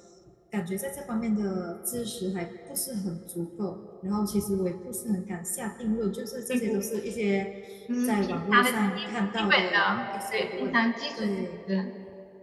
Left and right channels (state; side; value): identical; both; correlation 1.00